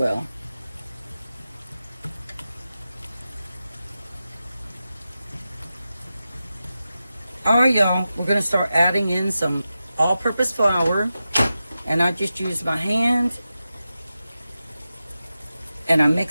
All right, y'all, we're going to start adding in some all-purpose flour. And I just use my hand and I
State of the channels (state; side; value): inverted; both; correlation -0.92